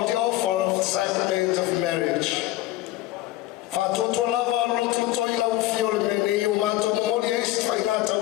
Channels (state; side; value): quieter; right; 16.2 dB